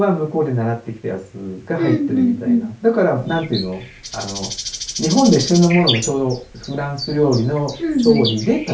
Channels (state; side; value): identical; both; correlation 1.00